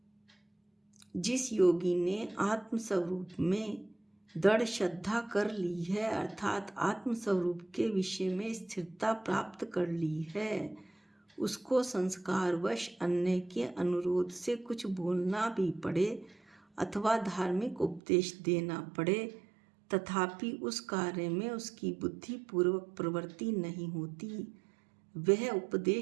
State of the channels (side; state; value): left; drops out; at 18.0 s